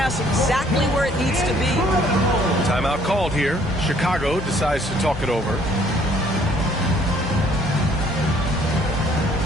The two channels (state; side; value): normal; both; correlation 0.61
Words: exactly where it needs to be. Timeout called here. Chicago decides to talk it over.